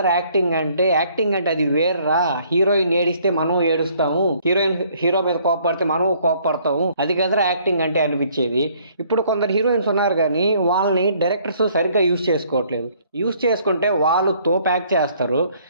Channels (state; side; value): inverted; both; correlation -0.62